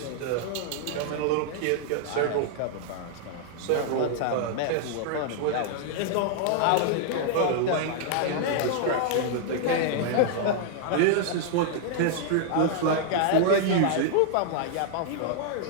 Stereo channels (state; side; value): different; both; correlation -0.01